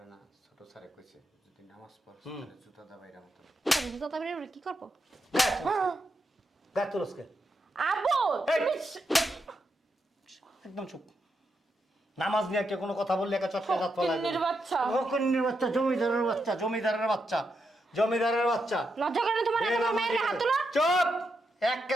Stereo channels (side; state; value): both; normal; correlation 0.84